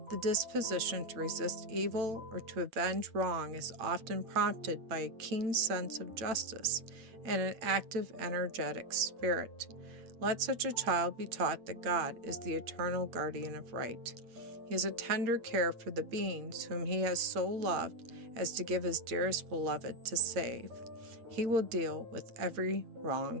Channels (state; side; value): late; left; 8.7 ms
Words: The disposition to resist evil or to avenge wrong is often prompted by a keen sense of justice and an active, energetic spirit. Let such a child be taught that God is the eternal guardian of right. He has a tender care for the beings whom he has so loved as to give his dearest beloved to save. He will deal with every